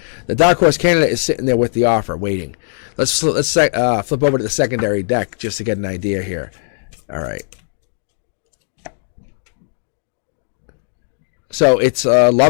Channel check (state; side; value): silent; right; digital silence